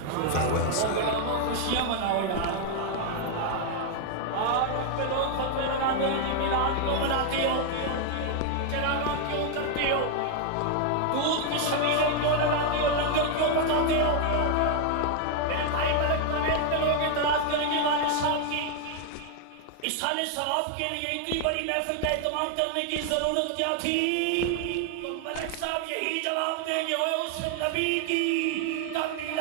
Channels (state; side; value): different; both; correlation 0.00